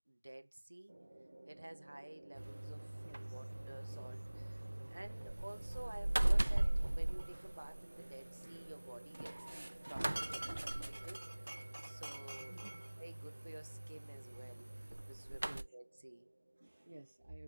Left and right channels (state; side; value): inverted; both; correlation -1.00